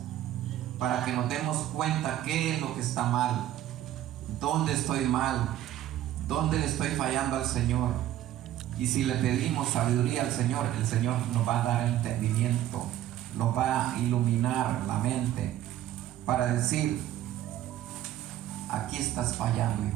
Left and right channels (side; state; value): left; quieter; 12.7 dB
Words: para que nos demos cuenta qué es lo que está mal, dónde estoy mal, dónde le estoy fallando al Señor. Y si le pedimos sabiduría al Señor, el Señor nos va a dar entendimiento, nos va a iluminar la mente para decir: aquí estás fallando,